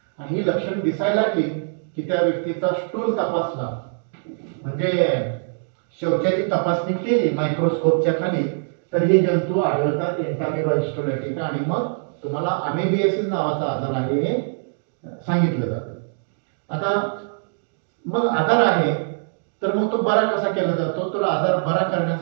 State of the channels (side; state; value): left; silent; digital silence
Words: आणि ही लक्षण दिसायला लागली की त्या व्यक्तीचा स्टूल तपासला म्हणजे शौचाची तपासणी केली मायक्रोस्कोपच्या खाली तर हे जंतू आढळतात, एंटामिबा हिस्टोलॅटिका. आणि मग तुम्हाला अमेबियासिस नावाचा आजार आहे हे सांगितलं जातं. आता मग आजार आहे तर मग तो बरा कसा केला जातो, तर आजार बरा